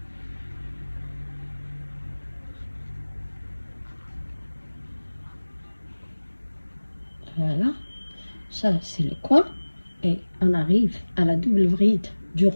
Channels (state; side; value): inverted; both; correlation -1.00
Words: Voilà, ça c'est le coin et on arrive à la double bride du